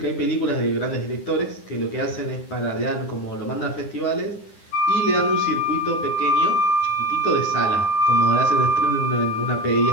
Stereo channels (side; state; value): right; late; 9.9 ms